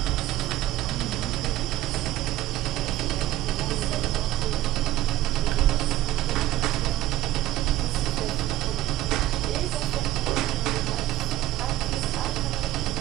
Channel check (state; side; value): quieter; left; 14.6 dB